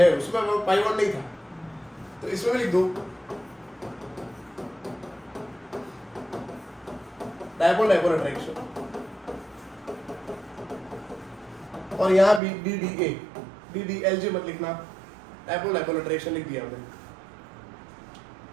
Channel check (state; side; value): drops out; left; at 12.4 s